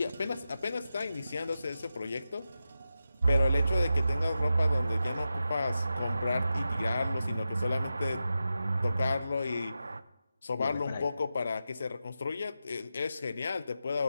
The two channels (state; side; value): inverted; both; correlation -0.89